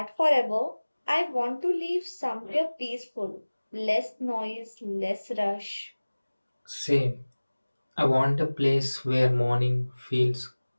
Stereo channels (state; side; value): inverted; both; correlation -1.00